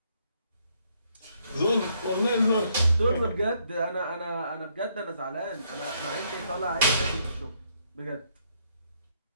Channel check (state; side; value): inverted; both; correlation -0.71